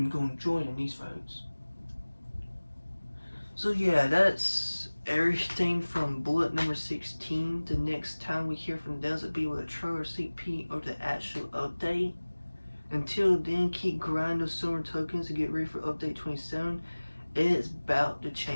going to join in these votes. So yeah, that's everything from bullet number 16. The next time we hear from them, it'll be with a trailer sneak peek or the actual update. Until then, keep grinding those silver tokens to get ready for update 27. It's about to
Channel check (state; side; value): inverted; both; correlation -1.00